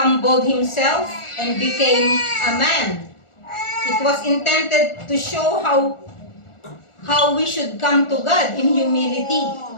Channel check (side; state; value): right; late; 1.4 ms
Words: Himself and became a man. It was intended to show how we should come to God in humility.